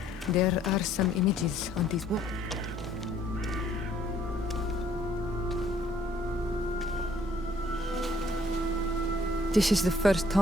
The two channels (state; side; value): normal; both; correlation 0.62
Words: there are some images on these walls. This is the first